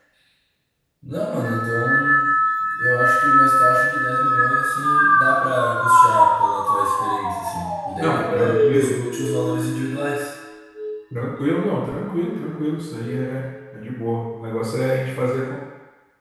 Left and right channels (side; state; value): both; identical; correlation 1.00